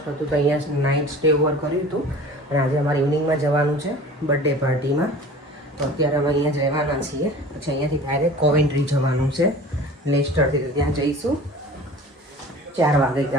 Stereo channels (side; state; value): both; normal; correlation 0.41